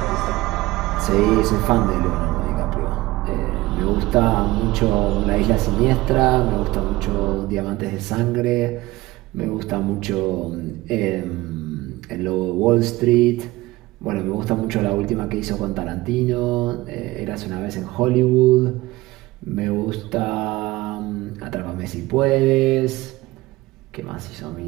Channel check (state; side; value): quieter; left; 19.2 dB